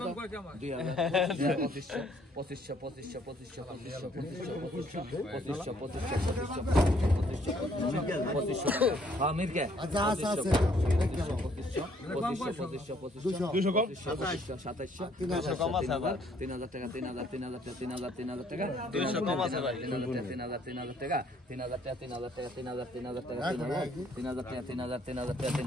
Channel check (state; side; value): normal; both; correlation 0.64